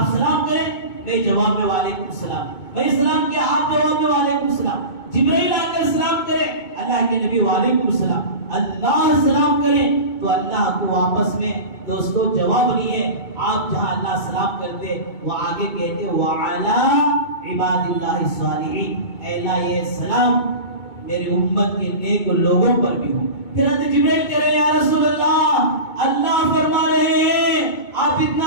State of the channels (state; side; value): late; right; 2.2 ms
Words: سلام کریں، میں جواب میں وعلیکم السلام، میں سلام کیا آپ جواب میں وعلیکم السلام. جبرائیل آ کر سلام کرے، اللہ کے نبی وعلیکم السلام. اللہ سلام کریں تو اللہ کو واپس میں دوستو جواب نہیں ہے. آپ جہاں اللہ سلام کرتے وہ آگے کہتے وعلا عباد اللہ الصالحین، اے اللہ یہ سلام میری امت کے نیک لوگوں پر بھی ہو۔ پھر حضرت جبرائیل کہہ رہے ہیں یا رسول اللہ فرما رہے ہیں آپ